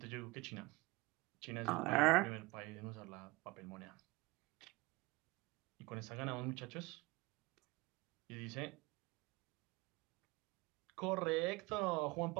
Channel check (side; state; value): left; quieter; 23.9 dB